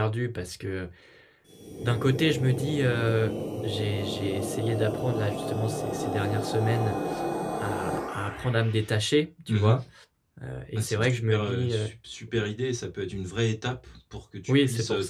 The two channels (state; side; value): identical; both; correlation 1.00